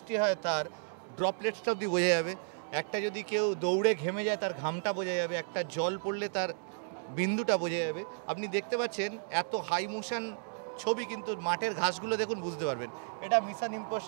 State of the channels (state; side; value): silent; left; digital silence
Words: হয় তার ড্রপলেটসটা অবধি বোঝা যাবে, একটা যদি কেউ দৌড়ে ঘেমে যায় তার ঘামটা বোঝা যাবে, একটা জল পড়লে তার বিন্দুটা বোঝা যাবে। আপনি দেখতে পাচ্ছেন এত হাই মোশন ছবি, কিন্তু মাঠের ঘাসগুলো দেখুন বুঝতে পারবেন। এটা মিশন